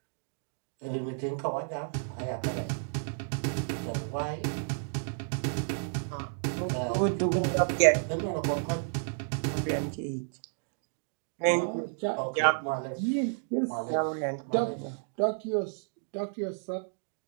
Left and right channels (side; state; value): left; silent; digital silence